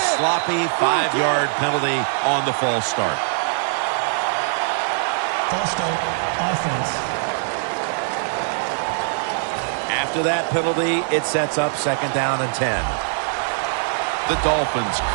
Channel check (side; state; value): left; silent; digital silence